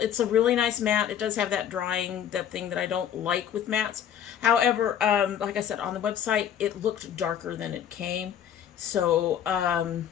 a really nice matte. It does have that drying, that thing that I don't like with mattes. However, like I said, on the website, it looked darker than it came. So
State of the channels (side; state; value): right; quieter; 9.5 dB